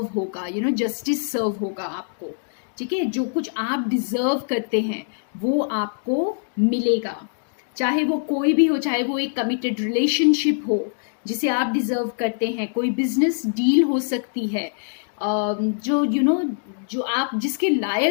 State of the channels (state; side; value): silent; right; digital silence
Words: होगा, जस्टिस सर्व होगा आपको। ठीक है, जो कुछ आप डिजर्व करते हैं वो आपको मिलेगा, चाहे वो कोई भी हो, चाहे वो एक कमिटेड रिलेशनशिप हो जिसे आप डिजर्व करते हैं, कोई बिजनेस डील हो सकती है जो जो आप जिसके